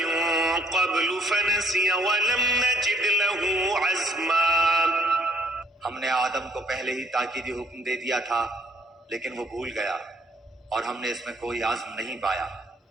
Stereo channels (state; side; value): normal; both; correlation 0.62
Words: قَبْلُ فَنَسِيَ وَلَمْ نَجِدْ لَهُ عَزْمًا. ہم نے آدم کو پہلے ہی تاکیدی حکم دے دیا تھا لیکن وہ بھول گیا اور ہم نے اس میں کوئی عزم نہیں پایا۔